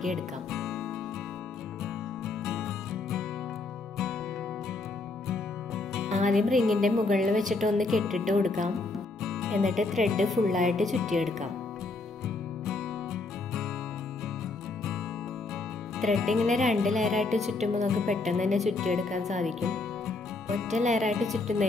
ആദ്യം റിങ്ങിൻ്റെ മുകളിൽ വെച്ചിട്ട് ഒന്ന് കെട്ടിട്ട് കൊടുക്കാം. എന്നിട്ട് ത്രെഡ് ഫുള്ളായിട്ട് ചുറ്റിയെടുക്കാം. ത്രെഡ് ഇങ്ങനെ 2 ലെയറായിട്ട് ചുറ്റുമ്പോൾ നമുക്ക് പെട്ടെന്ന് തന്നെ ചുറ്റിയെടുക്കാൻ സാധിക്കും. ഒറ്റ ലെയറായിട്ട്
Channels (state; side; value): quieter; right; 3.5 dB